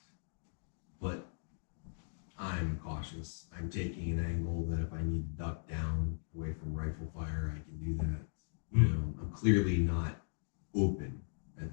but I'm cautious. I'm taking an angle that if I need to duck down away from rifle fire, I can do that. I'm clearly not open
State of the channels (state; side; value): silent; right; digital silence